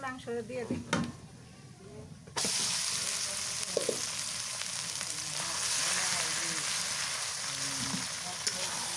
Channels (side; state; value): both; identical; correlation 1.00